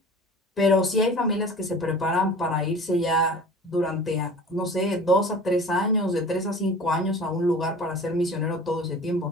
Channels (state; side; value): normal; both; correlation 0.41